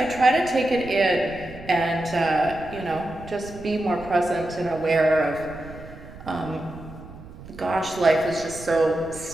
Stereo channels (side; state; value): right; noise; rumble, 16 dB below the sound